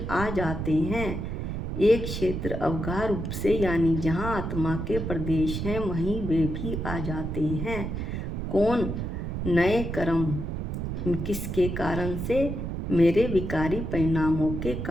आ जाते हैं। एक क्षेत्र अवगाह रूप से यानी जहाँ आत्मा के प्रदेश हैं वहीं वे भी आ जाते हैं। कौन? नए कर्म। किसके कारण से? मेरे विकारी परिणामों के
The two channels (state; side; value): noise; right; rumble, 4 dB below the sound